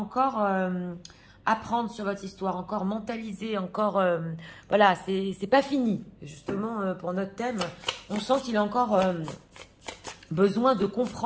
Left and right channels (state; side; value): identical; both; correlation 1.00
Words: apprendre sur votre histoire, encore mentaliser, encore... voilà, c'est pas fini. Justement, pour notre thème, on sent qu'il a encore besoin de